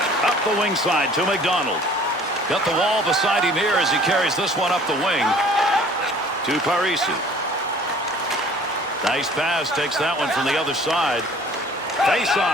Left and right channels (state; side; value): normal; both; correlation 0.51